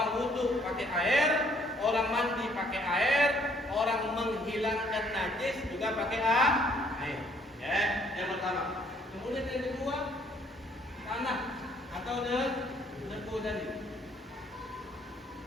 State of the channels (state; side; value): normal; both; correlation 0.64